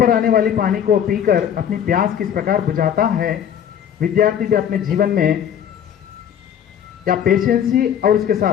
आने वाली पानी को पीकर अपनी प्यास किस प्रकार बुझाता है, विद्यार्थी भी अपने जीवन में या पेशेंसी और उसके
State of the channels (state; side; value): quieter; right; 9.1 dB